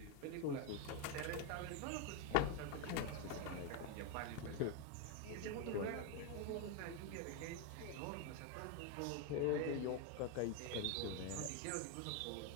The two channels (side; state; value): both; different; correlation 0.02